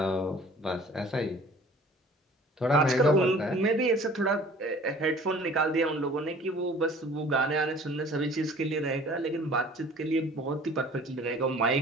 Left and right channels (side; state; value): both; normal; correlation 0.49